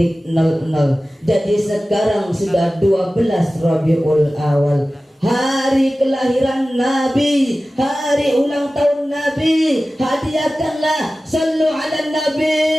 Jadi sekarang sudah 12 Rabiul Awal, hari kelahiran Nabi, hari ulang tahun Nabi. Hadiahkanlah, sallu ala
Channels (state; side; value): normal; both; correlation 0.96